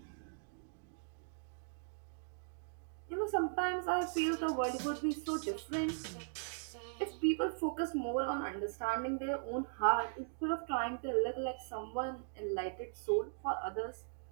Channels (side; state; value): left; silent; digital silence